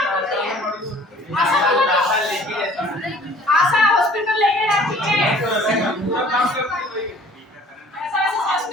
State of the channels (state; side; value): normal; both; correlation 0.52